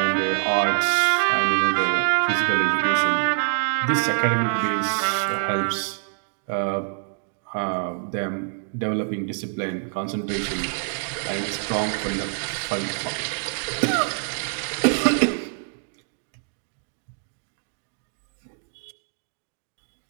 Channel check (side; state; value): left; silent; digital silence